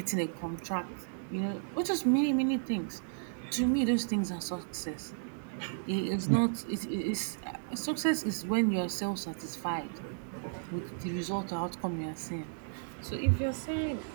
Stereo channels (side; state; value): left; silent; digital silence